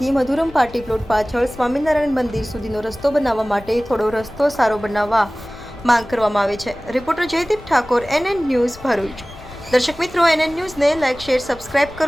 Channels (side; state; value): left; noise; rumble, 19 dB below the sound